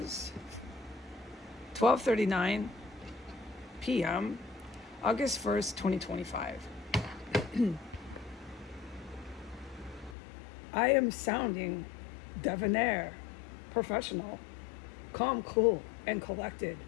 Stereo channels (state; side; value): drops out; right; at 10.2 s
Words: 12:39 p.m., August 1st, 2025. I am sounding debonair, professional, calm, cool, and collected,